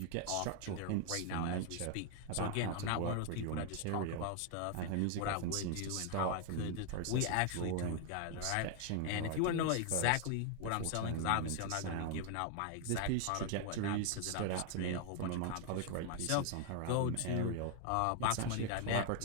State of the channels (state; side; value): different; both; correlation 0.00